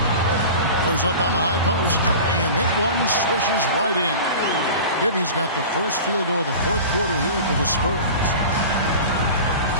Goes up on the high post, and that one swishes right in. Bibby's got the first field goal of the fourth quarter here for the Spurs.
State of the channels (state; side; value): inverted; both; correlation -0.35